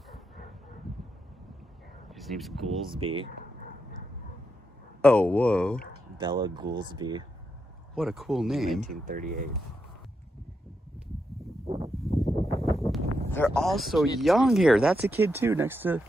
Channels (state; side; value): normal; both; correlation 0.84